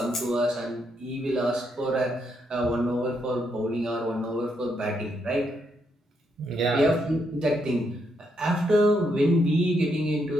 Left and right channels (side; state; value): both; normal; correlation 0.78